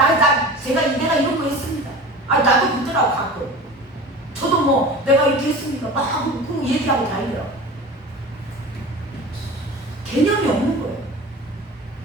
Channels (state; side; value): normal; both; correlation 0.36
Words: 내가 이런 거 했습니다. 나도 그러더라고 가끔. 저도 뭐 내가 이렇게 했습니까? 막 그 얘기하고 다니더라고. 개념이 없는 거예요.